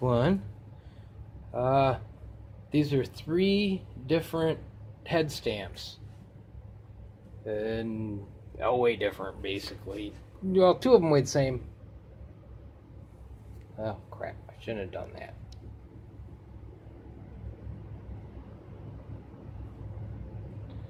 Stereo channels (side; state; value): both; identical; correlation 1.00